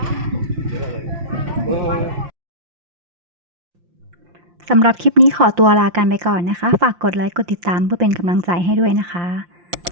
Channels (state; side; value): late; left; 5.7 ms